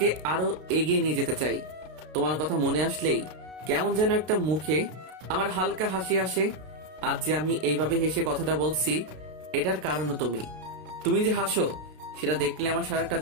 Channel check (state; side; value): late; left; 32 ms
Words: আরো এগিয়ে নিয়ে যেতে চাই। তোমার কথা মনে আসলেই কেমন যেন একটা মুখে আমার হালকা হাসি আসে। আজ যে আমি এইভাবে হেসে কথাটা বলছি, এটার কারণও তুমি। তুমি যে হাসো সেটা দেখলে আমার সারাটা